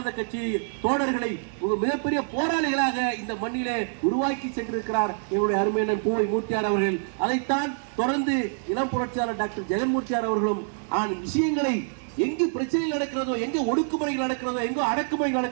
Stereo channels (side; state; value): left; silent; digital silence